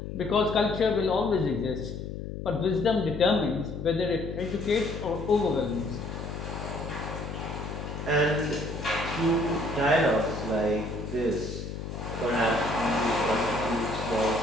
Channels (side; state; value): left; noise; hum, 7 dB below the sound